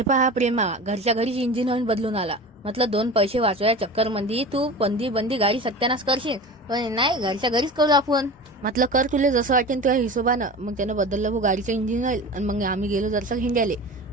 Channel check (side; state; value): both; normal; correlation 0.33